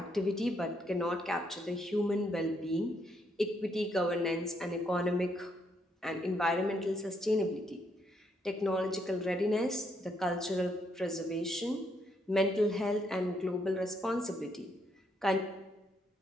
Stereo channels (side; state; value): both; normal; correlation 0.75